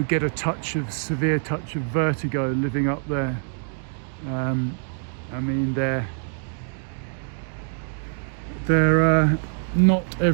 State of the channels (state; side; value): silent; left; digital silence